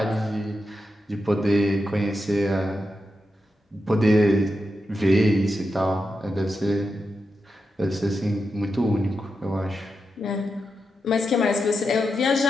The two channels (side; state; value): both; normal; correlation 0.88